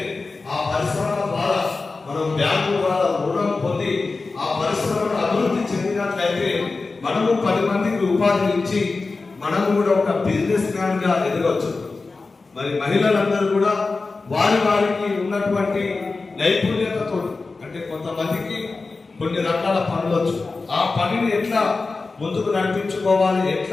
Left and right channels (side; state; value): right; quieter; 3.9 dB